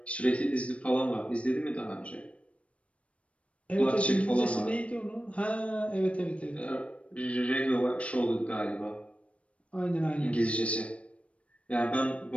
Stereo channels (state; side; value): late; right; 0.063 ms